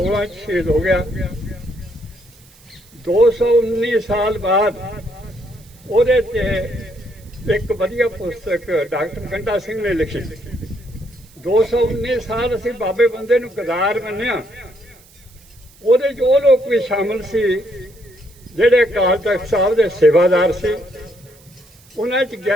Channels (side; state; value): right; noise; hiss, 27 dB below the sound